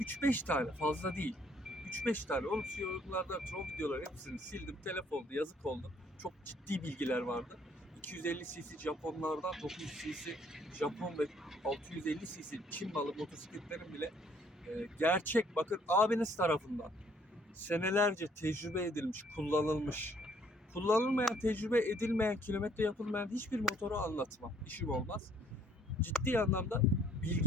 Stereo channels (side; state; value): both; normal; correlation 0.63